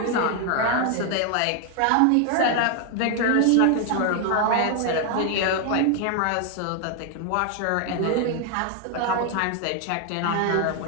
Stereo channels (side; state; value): both; different; correlation 0.00